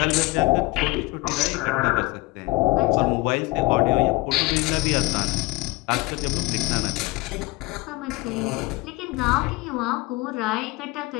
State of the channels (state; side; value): quieter; right; 22.3 dB